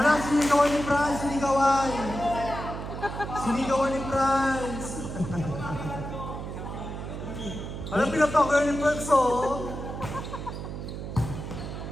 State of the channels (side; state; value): right; noise; hum, 7 dB below the sound